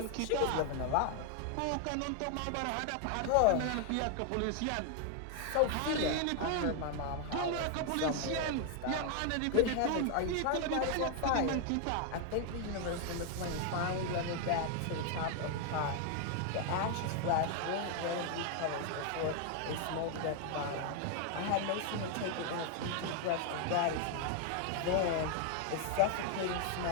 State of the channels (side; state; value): both; different; correlation 0.00